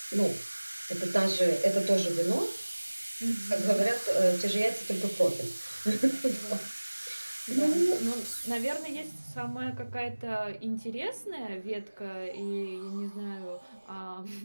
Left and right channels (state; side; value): inverted; both; correlation -1.00